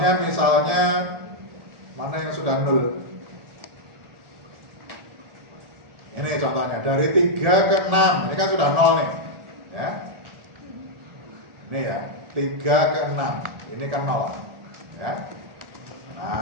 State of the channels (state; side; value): late; left; 1.7 ms